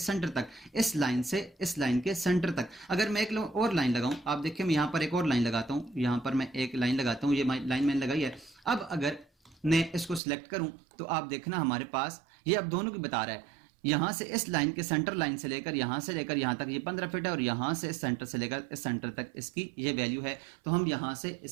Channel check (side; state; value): left; drops out; at 10.2 s